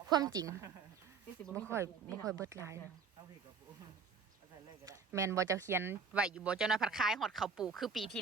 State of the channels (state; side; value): quieter; left; 5.4 dB